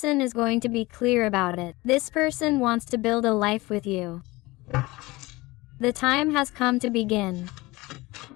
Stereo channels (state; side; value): quieter; right; 21.3 dB